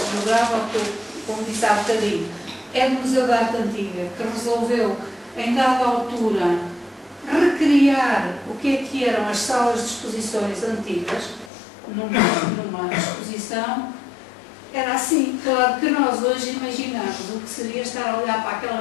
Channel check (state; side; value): drops out; right; at 11.5 s